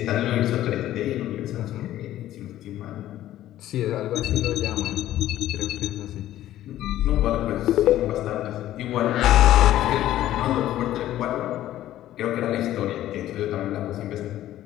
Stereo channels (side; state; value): right; quieter; 13.5 dB